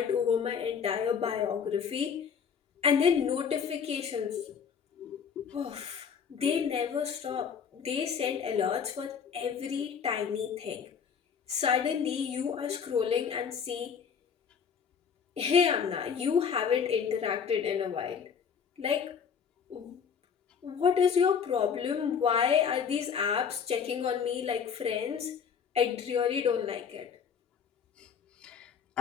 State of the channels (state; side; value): quieter; right; 6.9 dB